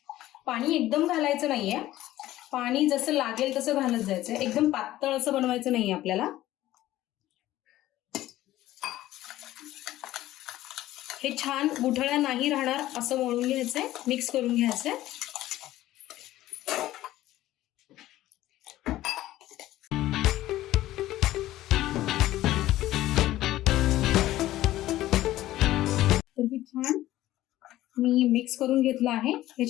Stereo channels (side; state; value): right; quieter; 15.0 dB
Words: पाणी एकदम घालायचं नाहीये, पाणी जसं लागेल तसं घालत जायचं, एकदम पातळ असं बनवायचं नाहीये आपल्याला। हे छान गुठळ्या नाही राहणार असं मळून घ्यायचंय, मिक्स करून घ्यायचंय। तर मी छान मिक्स करून घेतलं आहे।